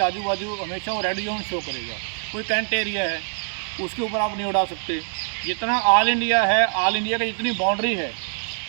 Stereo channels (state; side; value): silent; left; 61 dB below the other